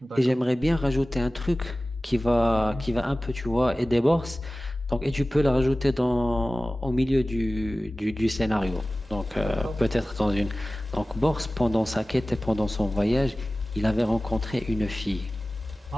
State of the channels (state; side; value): normal; both; correlation 0.97